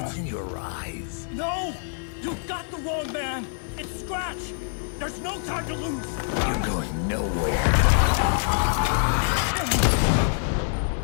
in your eyes. No! You got the wrong man! It's Scratch! There's no time to lose! You're going nowhere.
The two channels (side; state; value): right; silent; 55 dB below the other